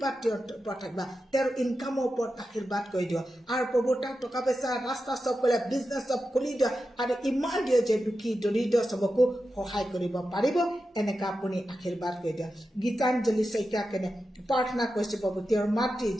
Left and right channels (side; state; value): both; normal; correlation 0.90